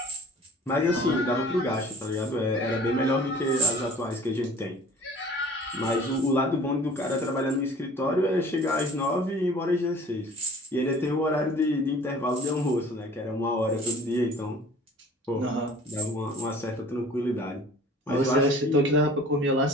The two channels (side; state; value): both; normal; correlation 0.47